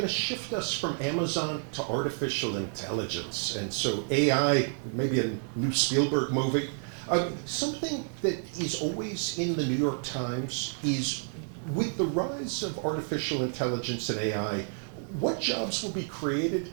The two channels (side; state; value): left; silent; 58 dB below the other